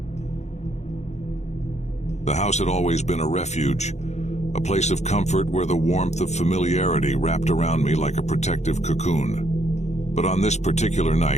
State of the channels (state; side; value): late; right; 0.33 ms